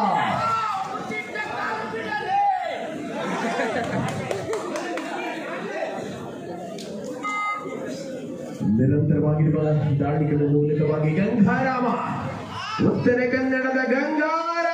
ನಿರಂತರವಾಗಿರುವ ದಾಳಿಗಳ ಮೂಲಕವಾಗಿ ಗಂಗಾರಾಮ, ಉತ್ತರ ಕನ್ನಡದ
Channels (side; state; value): both; identical; correlation 1.00